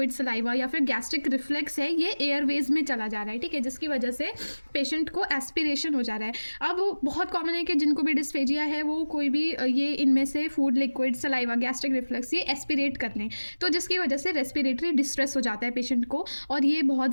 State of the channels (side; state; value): both; inverted; correlation -1.00